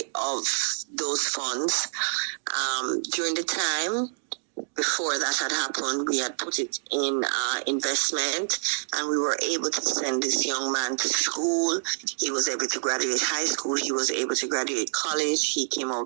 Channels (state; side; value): silent; left; digital silence